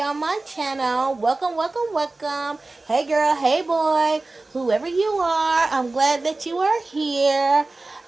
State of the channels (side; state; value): left; quieter; 3.2 dB